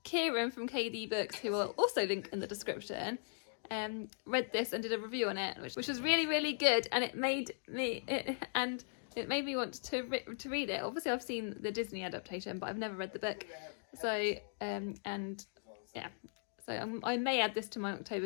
Kieran from KD Books, who will also link in the description, read this and did a review on it, which was really good, and it made me want to read it. Obviously I've seen the Disney adaptation, but I've never read the book, so yeah, so I may add this to my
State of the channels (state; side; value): silent; right; digital silence